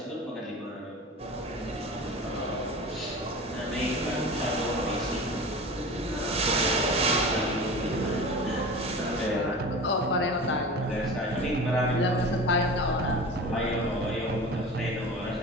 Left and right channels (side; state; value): both; normal; correlation 0.34